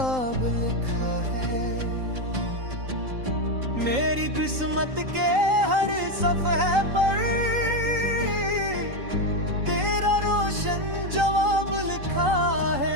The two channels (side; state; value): left; late; 3.9 ms